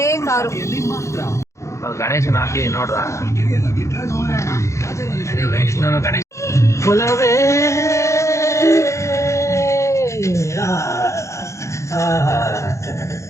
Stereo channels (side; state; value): right; late; 0.14 ms